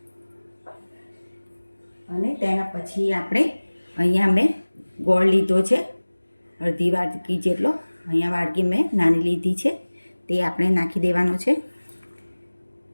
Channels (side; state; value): both; inverted; correlation -1.00